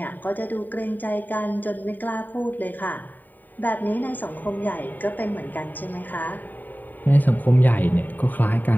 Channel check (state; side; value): late; right; 0.088 ms